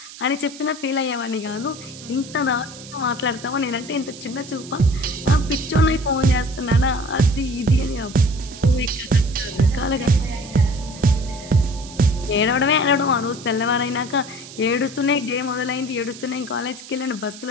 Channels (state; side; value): noise; right; hiss, 16 dB below the sound